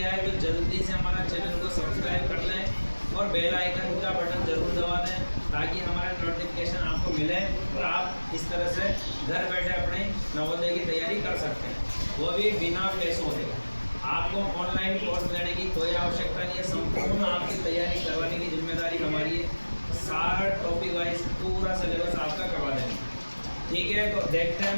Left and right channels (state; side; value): inverted; both; correlation -1.00